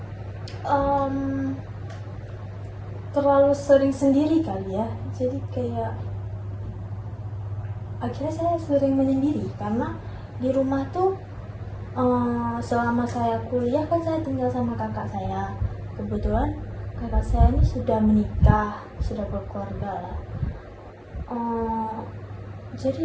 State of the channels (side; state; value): both; identical; correlation 1.00